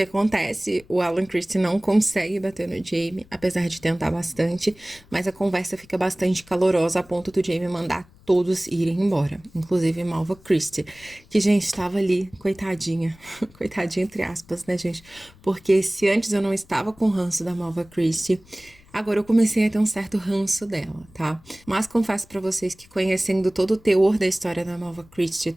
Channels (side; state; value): left; noise; rumble, 26 dB below the sound